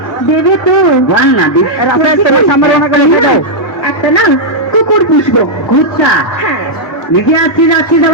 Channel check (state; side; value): normal; both; correlation -0.05